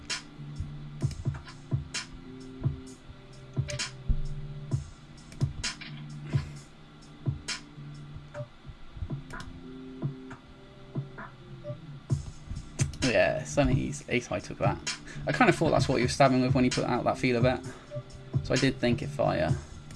Yeah, Sonny's ace high took that. I kind of thought that's what he was stabbing with when he put out that feeler bet. So I did think if I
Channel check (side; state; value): both; identical; correlation 1.00